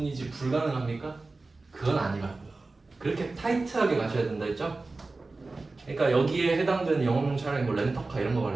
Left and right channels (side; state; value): left; quieter; 3.5 dB